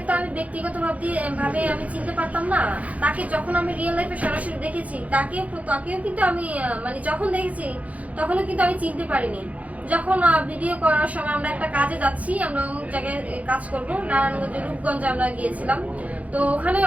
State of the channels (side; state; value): left; late; 0.069 ms